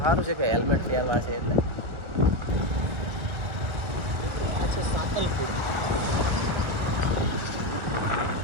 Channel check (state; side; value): late; left; 1.4 ms